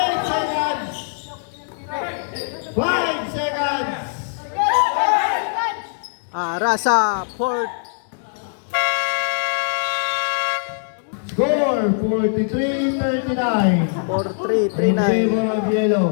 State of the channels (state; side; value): silent; right; digital silence